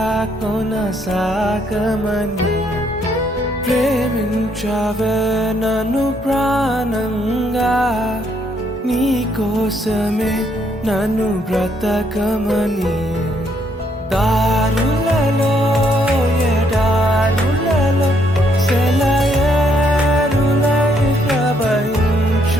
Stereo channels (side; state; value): both; normal; correlation 0.71